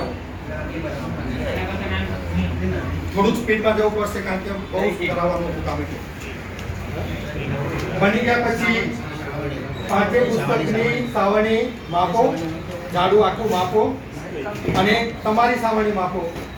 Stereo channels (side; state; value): both; identical; correlation 1.00